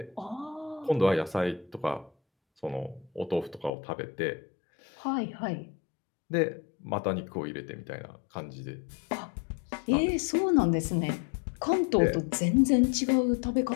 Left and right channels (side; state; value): right; drops out; at 3.7 s